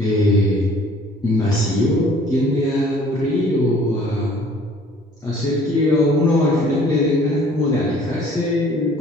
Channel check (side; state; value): both; normal; correlation 0.54